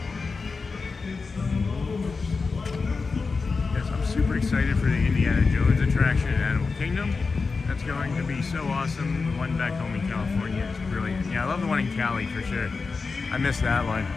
Yes, I'm super excited for the Indiana Jones attraction at Animal Kingdom. That's going to be so awesome. The one back home in California is brilliant. Yeah, I love the one in Cali for sure. I missed that one.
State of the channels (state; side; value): quieter; right; 4.5 dB